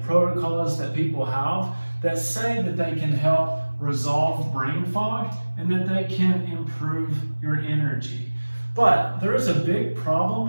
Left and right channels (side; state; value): both; inverted; correlation -1.00